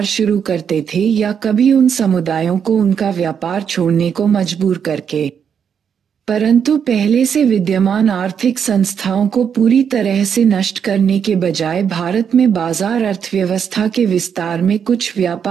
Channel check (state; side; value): quieter; left; 7.5 dB